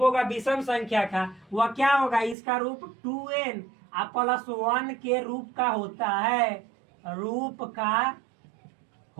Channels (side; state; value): left; drops out; at 2.4 s